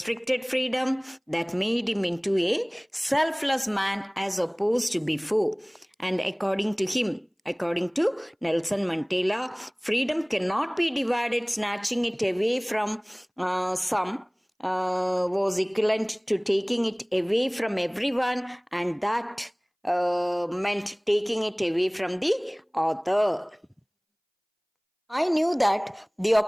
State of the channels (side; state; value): both; identical; correlation 1.00